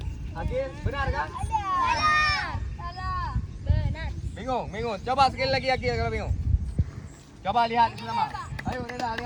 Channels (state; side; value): identical; both; correlation 1.00